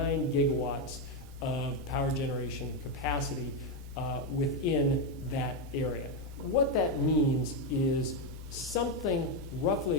gigawatts of power generation capacity within that area. What that means is something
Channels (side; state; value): right; noise; rumble, 18 dB below the sound